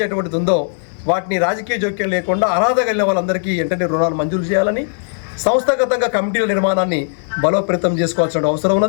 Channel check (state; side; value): silent; right; digital silence